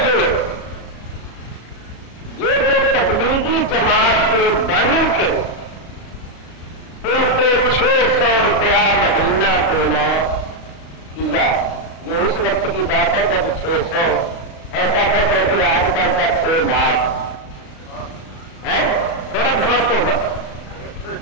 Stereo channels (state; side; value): late; right; 36 ms